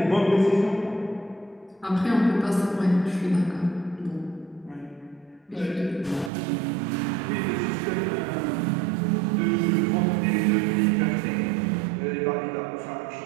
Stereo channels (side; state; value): left; drops out; at 6.3 s